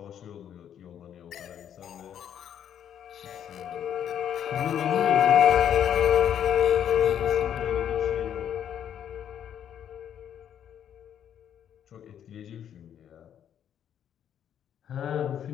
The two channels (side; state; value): right; quieter; 9.5 dB